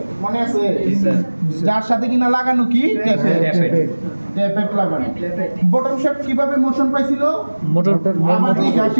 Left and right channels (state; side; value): inverted; both; correlation -1.00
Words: মনে আছে? যার সাথে কিনা লাগানো কি ট্যাপেট লাগানো। বটম শেপ কিভাবে মোশন পাইছিল, মোটর আমাদের